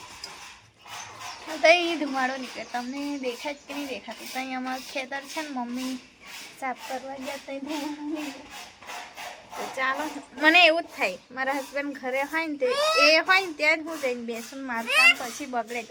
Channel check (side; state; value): both; identical; correlation 1.00